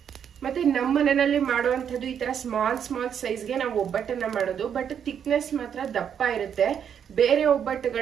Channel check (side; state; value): left; quieter; 8.2 dB